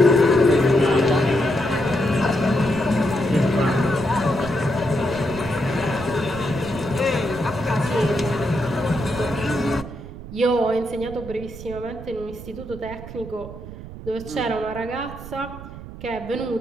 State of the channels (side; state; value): right; noise; rumble, 13 dB below the sound